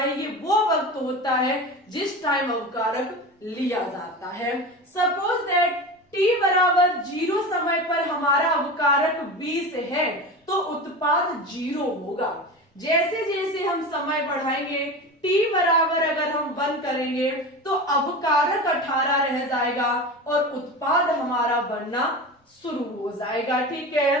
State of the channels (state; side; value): normal; both; correlation 0.28